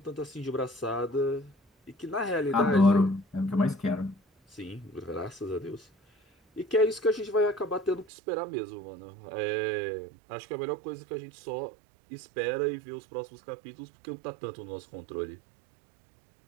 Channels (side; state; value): left; drops out; at 8.1 s